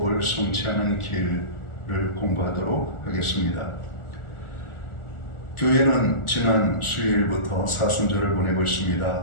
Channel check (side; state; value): right; late; 1.4 ms